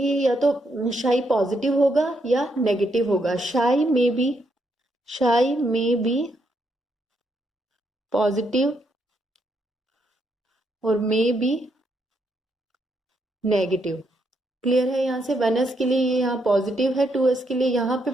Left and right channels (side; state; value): both; normal; correlation 0.77